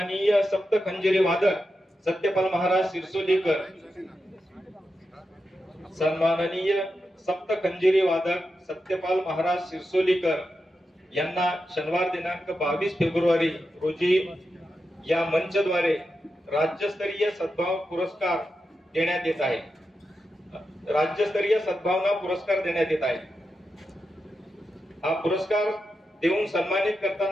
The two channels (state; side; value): normal; both; correlation 0.88